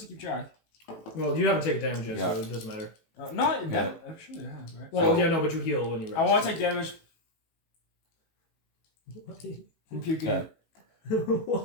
to keep track? Well, you haven't taken damage yet, Yeah. so it doesn't matter. No, that actually I have, right? Well, So- yeah, no, but you heal when you rest. I want to take damage from puking. Okay.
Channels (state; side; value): late; right; 18 ms